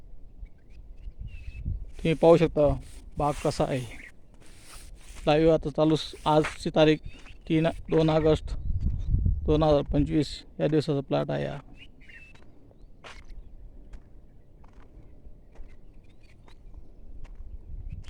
तुम्ही पाहू शकता बाग कसा आहे. लाईव्ह आता चालू. आजची तारीख 2 ऑगस्ट 2025 या दिवसाचा प्लॉट आहे.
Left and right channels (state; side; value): identical; both; correlation 1.00